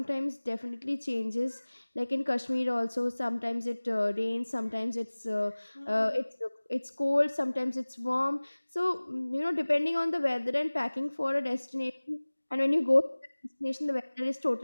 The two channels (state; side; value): inverted; both; correlation -1.00